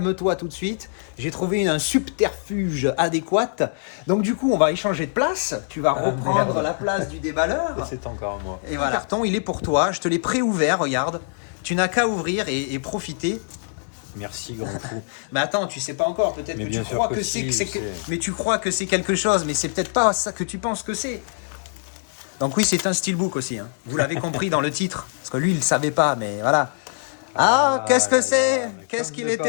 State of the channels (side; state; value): right; silent; 61 dB below the other